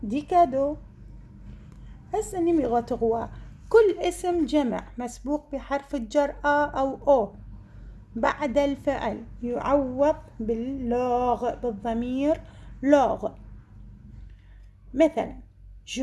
des cadeaux. هسه numéro 3: كل اسم جمع مسبوق بحرف الجر أو أو بعد الفعل يعوض باللوغ، بالضمير لوغ. مثلا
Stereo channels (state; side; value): identical; both; correlation 1.00